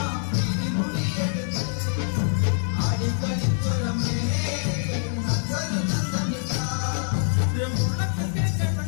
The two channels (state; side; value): silent; right; digital silence